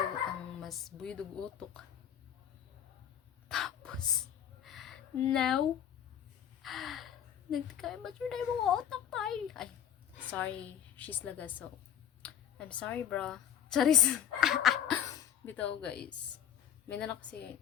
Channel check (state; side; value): quieter; right; 9.8 dB